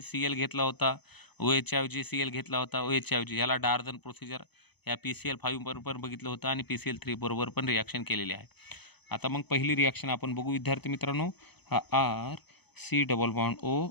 Cl घेतला होता, OHच्या ऐवजी Cl घेतला होता, OHच्या ऐवजी. याला डार्झन प्रोसिजर या PCl5 बरोबर बघितलं होतं आणि PCl3 बरोबर पण रिॲक्शन केलेली आहे. आता मग पहिली रिॲक्शन आपण बघू विद्यार्थी मित्रांनो. हा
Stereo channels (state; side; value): late; right; 0.99 ms